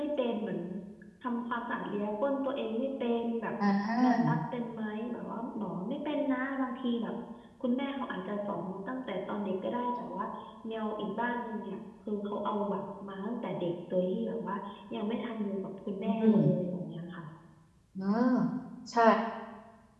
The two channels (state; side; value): identical; both; correlation 1.00